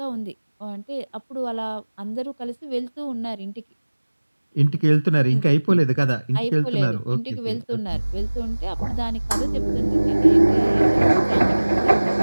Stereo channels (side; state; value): both; inverted; correlation -1.00